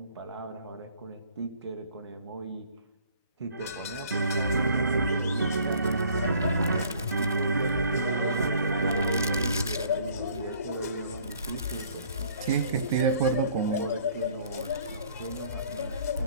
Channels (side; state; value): both; inverted; correlation -0.56